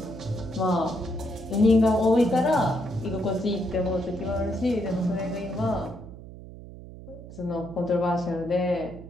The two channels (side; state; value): right; noise; hum, 15 dB below the sound